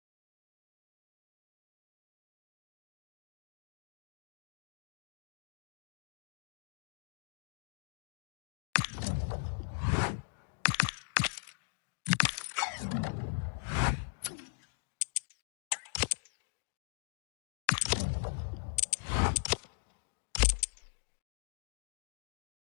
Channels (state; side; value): silent; right; digital silence